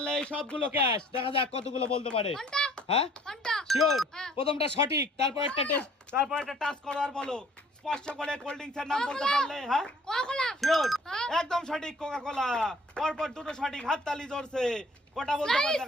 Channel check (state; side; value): normal; both; correlation 0.56